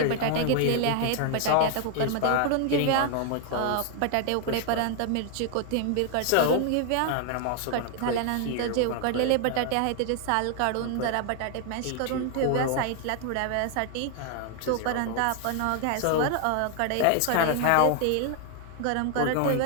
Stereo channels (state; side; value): different; both; correlation 0.00